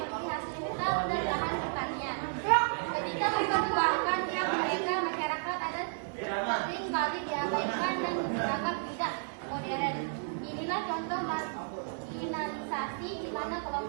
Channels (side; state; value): left; silent; 56 dB below the other